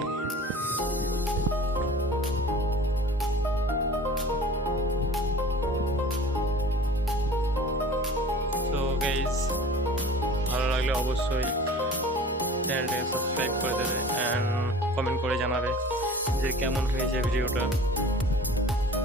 তো গাইজ, ভালো লাগলে অবশ্যই চ্যানেলটাকে সাবস্ক্রাইব করে দেবে অ্যান্ড কমেন্ট করে জানাবে যে কেমন হয়েছে ভিডিওটা।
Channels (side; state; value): both; normal; correlation 0.43